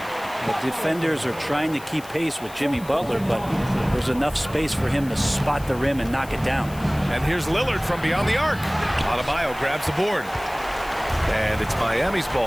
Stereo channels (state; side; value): noise; left; hiss, 19 dB below the sound